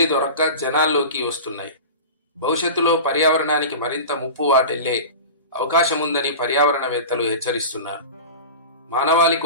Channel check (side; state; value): both; inverted; correlation -0.31